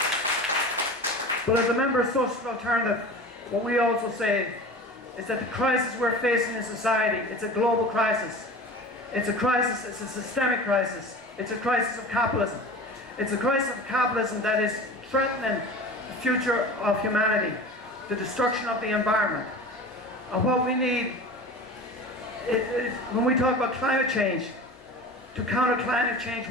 But as a member of Social Alternative, what we also say is that the crisis we're facing in society, it's a global crisis. It's a crisis, it's a systemic crisis. It's a crisis of capitalism. It's a crisis of capitalism that is threatening the future of humanity, the destruction of the environment. And what we need when we talk about climate change, to counter climate change,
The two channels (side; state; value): both; normal; correlation 0.35